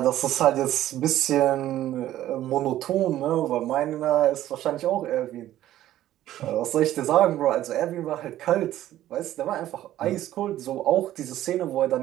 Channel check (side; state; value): left; quieter; 13.4 dB